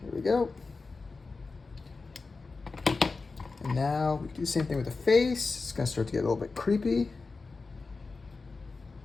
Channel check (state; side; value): quieter; right; 4.1 dB